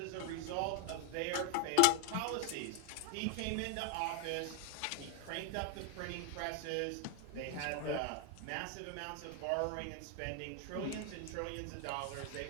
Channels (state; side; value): different; both; correlation 0.01